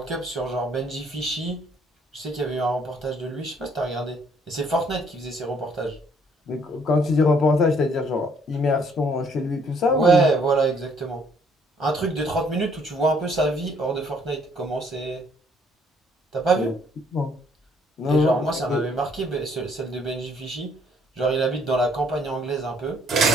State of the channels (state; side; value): normal; both; correlation 0.65